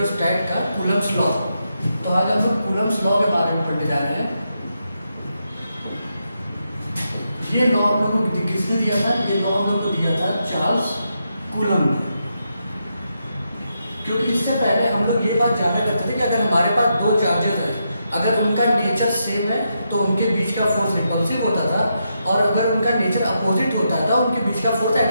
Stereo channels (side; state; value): both; inverted; correlation -0.83